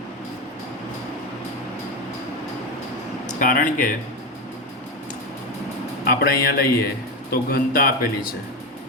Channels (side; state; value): both; normal; correlation 0.15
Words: કારણ કે આપણે અહીંયા લઈએ તો ઘનતા આપેલી છે,